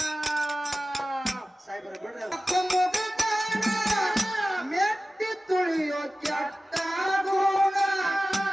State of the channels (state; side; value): normal; both; correlation 0.96